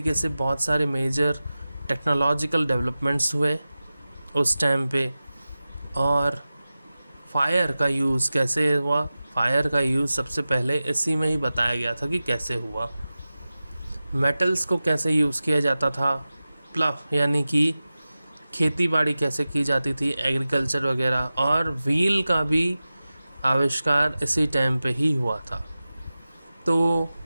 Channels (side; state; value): both; inverted; correlation -0.95